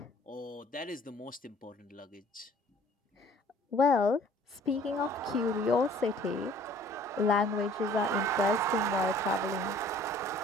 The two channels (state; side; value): normal; both; correlation 0.53